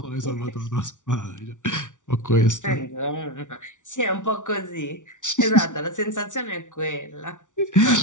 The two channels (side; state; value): right; late; 0.87 ms